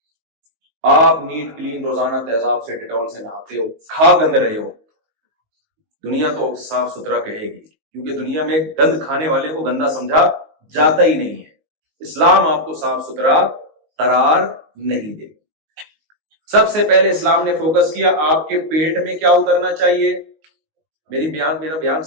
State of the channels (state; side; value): late; left; 19 ms